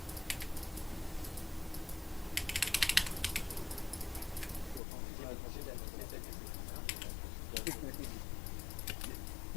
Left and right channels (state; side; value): drops out; right; at 4.8 s